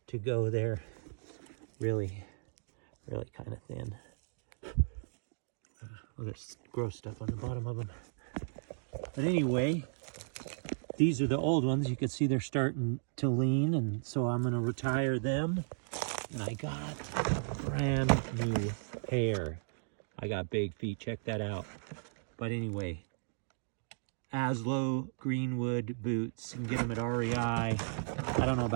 to go there. Really kind of thin. Well, there's gross stuff on the bottom of them. But anyway, these are the old ones. You can see they're starting to lean, and so I'm going to retire them. And I got a brand new pair. I got big feet, check that out. But anyway, Aslo Greenwood boots. You can get them at REI. I don't know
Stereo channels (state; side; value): silent; left; digital silence